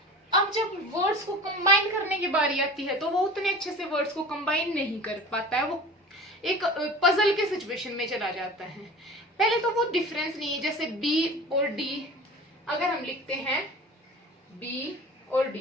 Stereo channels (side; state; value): both; normal; correlation 0.38